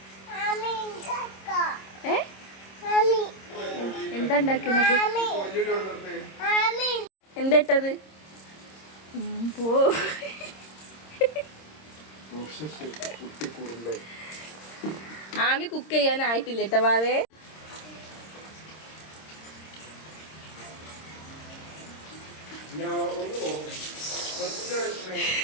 എന്താ ഉണ്ടാക്കുന്നത് എന്താ ഇട്ടത് പോ ആമി കുക്ക് ചെയ്യാനായിട്ടില്ല കേട്ടോ വാവേ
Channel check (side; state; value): right; late; 26 ms